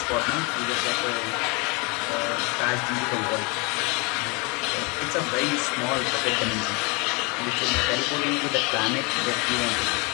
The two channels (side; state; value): right; quieter; 29.4 dB